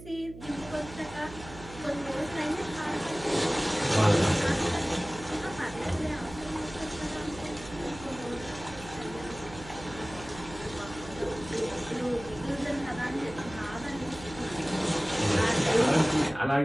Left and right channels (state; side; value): noise; right; hum, 15 dB below the sound